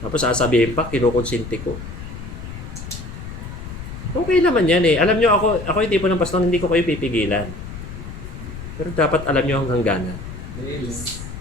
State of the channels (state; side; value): noise; left; rumble, 10 dB below the sound